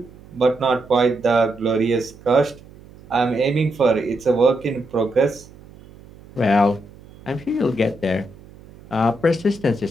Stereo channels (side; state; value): right; noise; hum, 22 dB below the sound